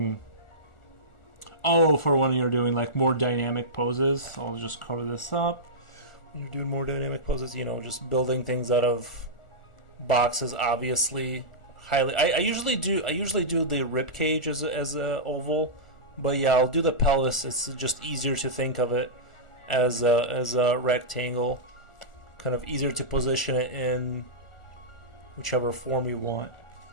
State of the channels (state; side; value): late; right; 1.4 ms